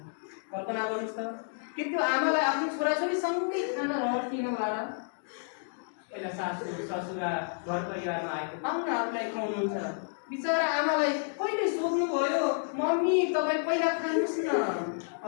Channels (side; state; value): right; silent; digital silence